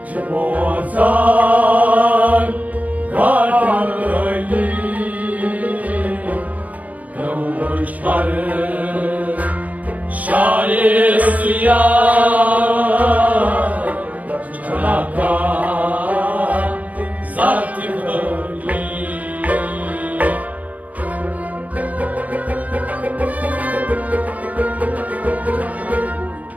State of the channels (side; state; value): left; late; 0.074 ms